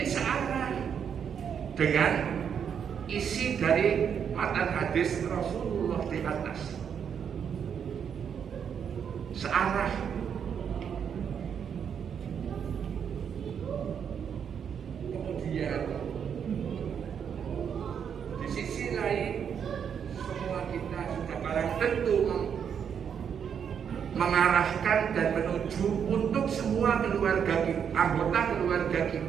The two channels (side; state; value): left; quieter; 7.7 dB